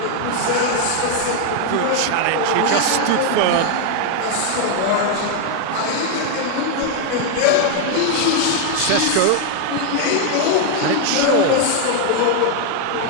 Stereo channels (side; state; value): both; different; correlation 0.00